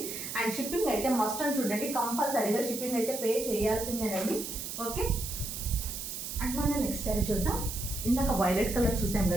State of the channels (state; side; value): noise; right; hiss, 6 dB below the sound